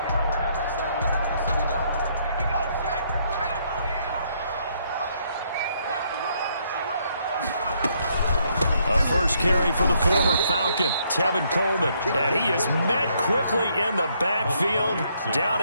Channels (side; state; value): both; inverted; correlation -0.71